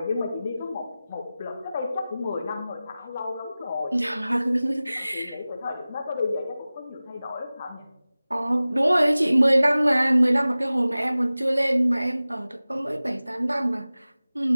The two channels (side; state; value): both; inverted; correlation -0.97